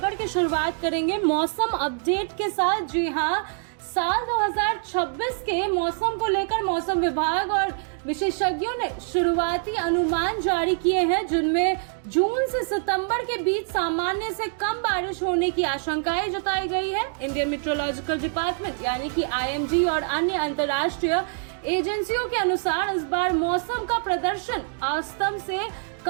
की शुरुआत करेंगे मौसम अपडेट के साथ। जी हाँ, साल 2026 के मौसम को लेकर मौसम विभाग और विशेषज्ञों ने शुरुआती अनुमान जारी किए हैं, जिनमें जून से सितंबर के बीच सामान्य से कम बारिश होने की आशंकाएं जताई गई है। इंडियन मेट्रोलॉजिकल डिपार्टमेंट यानी कि IMD और अन्य अंतर्राष्ट्रीय एजेंसियों के अनुसार इस बार मौसम का प्रदर्शन औसतन से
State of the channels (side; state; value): left; silent; 62 dB below the other